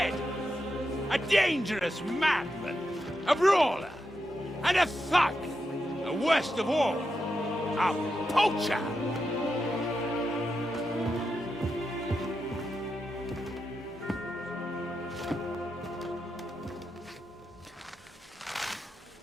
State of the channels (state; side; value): normal; both; correlation 0.87